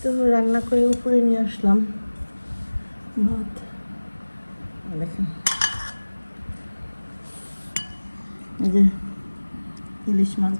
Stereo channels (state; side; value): inverted; both; correlation -1.00